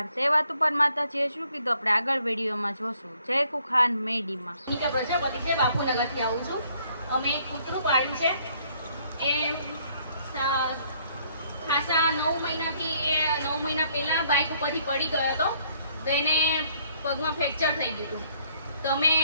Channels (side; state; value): both; inverted; correlation -0.65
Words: તે વાત ઉપર માતાજીએ શું કીધું આપણે આગળ વિડીયોમાં જોશું. જય ખુખાન મેડીમાં. નીકા પ્રજાપતિ છે, બાપુનગરથી આવું છું. અમે એક કૂતરું પાડ્યું છે. એ ખાસા 9 મહિનાથી એ 9 મહિના પહેલા બાઇક ઉપરથી પડી ગયો હતો, તો એને પગમાં ફ્રેક્ચર થઈ ગયું હતું. તો અમે